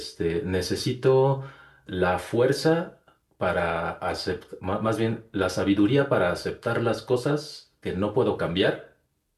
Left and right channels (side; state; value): both; identical; correlation 1.00